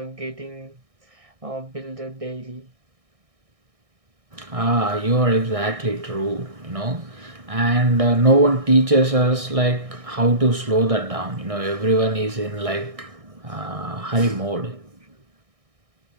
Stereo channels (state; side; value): late; left; 1.6 ms